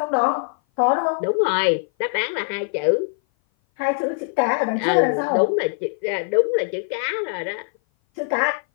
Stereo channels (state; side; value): silent; right; 58 dB below the other